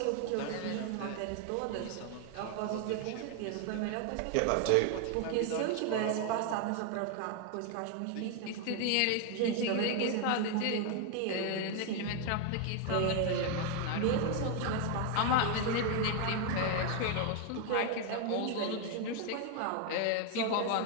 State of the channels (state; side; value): different; both; correlation 0.01